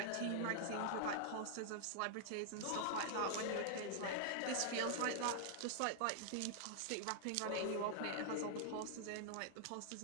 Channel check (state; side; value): different; both; correlation 0.00